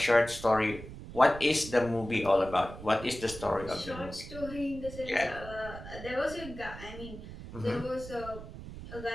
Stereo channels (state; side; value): noise; right; rumble, 12 dB below the sound